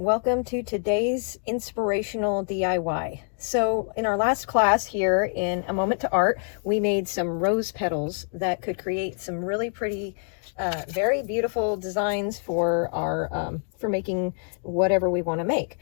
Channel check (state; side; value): silent; right; 55 dB below the other